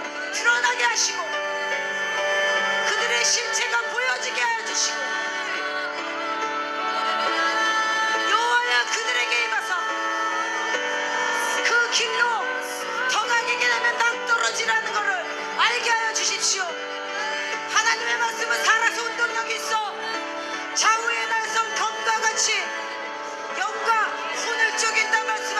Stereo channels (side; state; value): both; identical; correlation 1.00